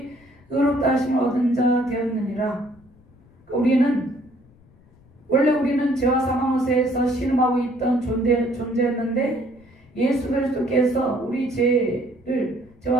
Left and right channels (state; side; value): noise; left; rumble, 28 dB below the sound